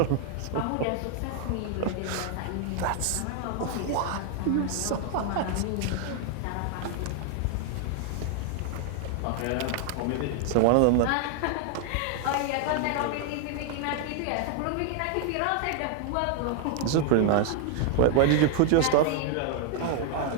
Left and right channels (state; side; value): different; both; correlation 0.00